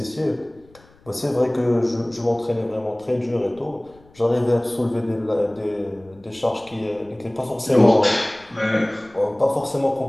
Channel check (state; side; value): noise; left; rumble, 28 dB below the sound